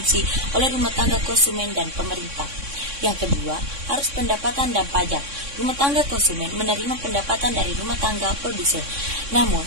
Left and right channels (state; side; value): late; left; 3.6 ms